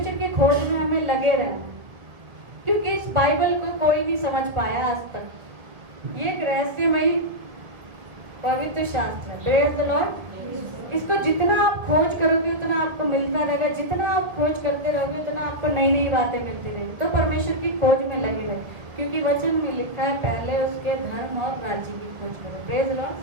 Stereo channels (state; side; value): late; left; 1.4 ms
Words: की खोज में हमें लगे रहना, क्योंकि इस बाइबल को कोई नहीं समझ पाया आज तक। ये एक रहस्यमयी पवित्र शास्त्र है। Praise the Lord. इसको जितना आप खोज करोगे उतना आपको मिलता रहेगा, जितना आप खोज करते रहोगे उतना आपको नई नई बातें मिलती रहेगी। तो परमेश्वर की खोज में लगे रहे, क्योंकि वचन में लिखा है पहले उसके धर्म और राज्य की खोज करो। Praise the